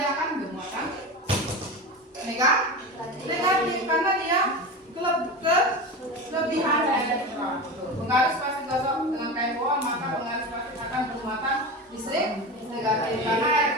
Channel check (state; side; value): normal; both; correlation 0.25